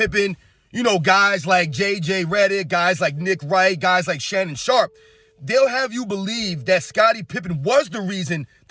you know, guys like J.J. Redick, guys like Nick Wright, guys like Shannon Sharp, they'll have you believe that Scottie Pippen was the reason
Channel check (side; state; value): both; identical; correlation 1.00